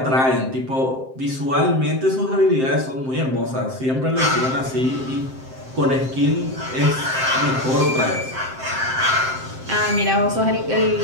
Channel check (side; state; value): left; late; 7.6 ms